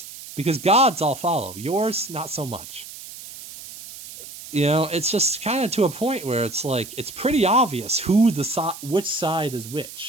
Because God's I'll follow. Yours, not so much. It's just kind of to a point where it's like, it's pretty obvious which side is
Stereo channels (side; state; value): right; noise; hiss, 14 dB below the sound